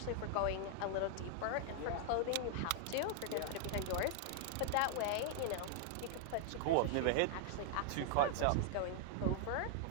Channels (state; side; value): different; both; correlation 0.00